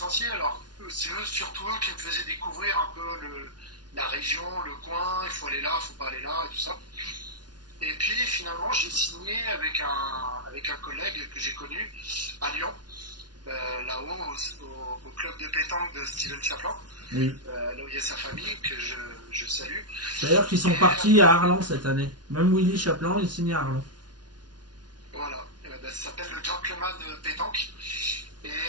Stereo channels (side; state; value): left; late; 0.69 ms